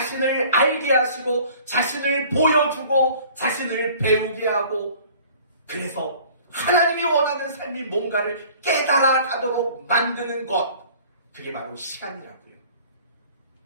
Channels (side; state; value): both; inverted; correlation -0.50